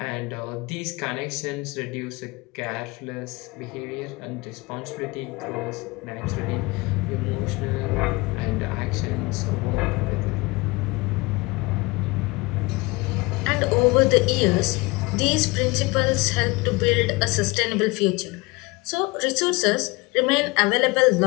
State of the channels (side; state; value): right; quieter; 24.4 dB